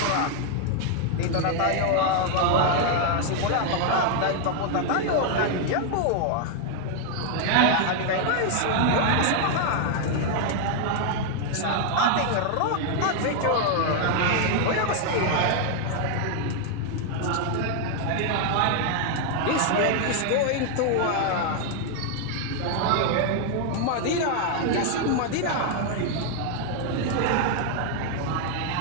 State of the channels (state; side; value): different; both; correlation 0.00